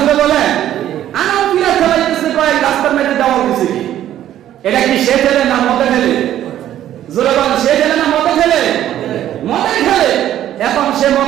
বলে? আনাও পিলার খেলাইতেছে, কয়েক রাস্তার মাঝে দেওয়াল দিছে কি? এটা কি সে খেলে না মদে খেলে? জোরে বলেন, সে খেলে না মদে খেলে? মদে খেলে। এখন সে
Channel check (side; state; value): left; quieter; 11.9 dB